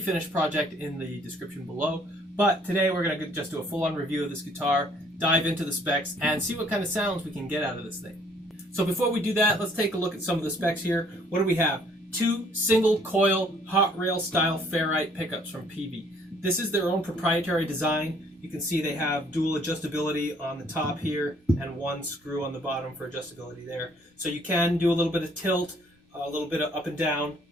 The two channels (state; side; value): normal; both; correlation 0.61